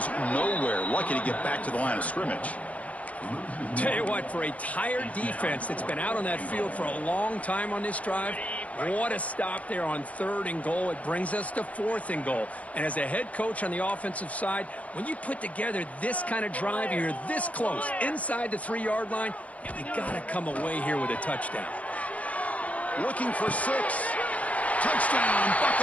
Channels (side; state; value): right; late; 0.066 ms